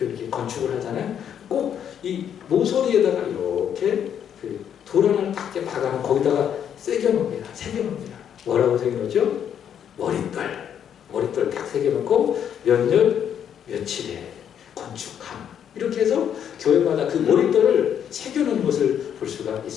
건축을 하잖아요. 꼭 이 모서리에다가 이렇게 그 돌 하나를 딱 박아놓고 거기다가 새겨놓습니다. 새겨놓습니다. 뭐라고 새겨놓죠? 머릿돌 딱 새겨놓고 몇 년 며칠에 건축함, 이렇게 해서 교회마다 그 머릿돌을 새겨놓은 것을 볼 수가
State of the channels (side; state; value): right; quieter; 8.9 dB